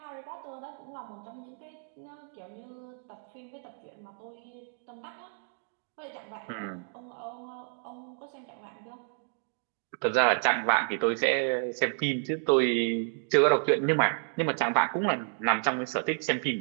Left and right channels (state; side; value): silent; left; 57 dB below the other